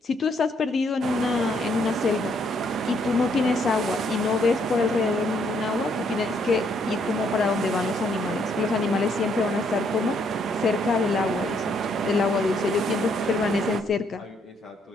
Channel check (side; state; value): both; normal; correlation 0.71